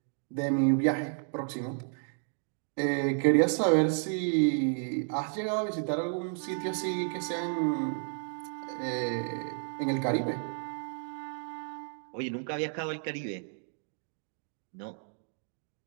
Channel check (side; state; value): left; silent; 55 dB below the other